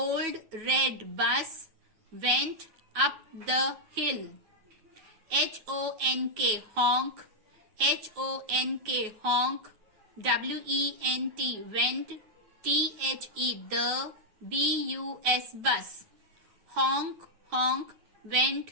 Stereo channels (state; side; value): late; left; 9.3 ms